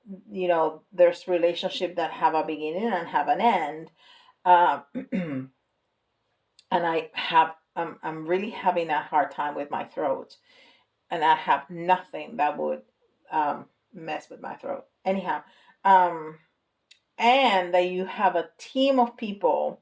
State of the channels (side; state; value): both; identical; correlation 1.00